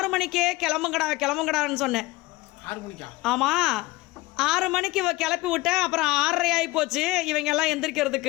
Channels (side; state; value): right; quieter; 20.5 dB